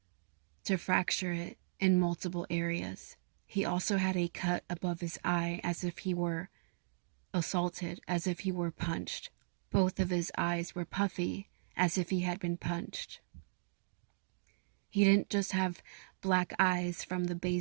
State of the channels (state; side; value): silent; left; digital silence